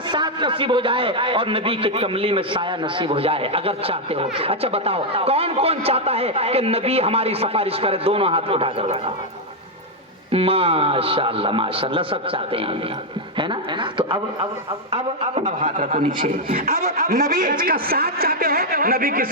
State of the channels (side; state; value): both; normal; correlation 0.00